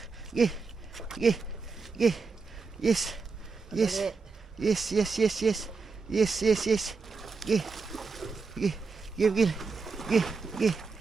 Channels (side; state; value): left; quieter; 4.6 dB